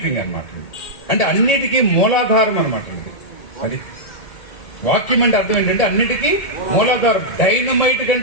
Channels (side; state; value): right; late; 1.7 ms